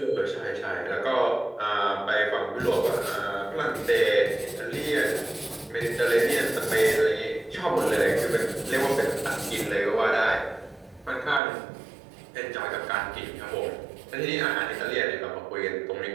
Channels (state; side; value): drops out; left; at 11.4 s